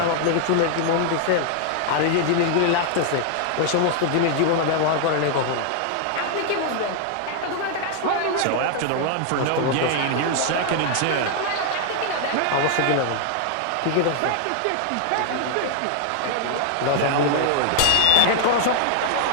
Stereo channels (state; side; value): different; both; correlation 0.00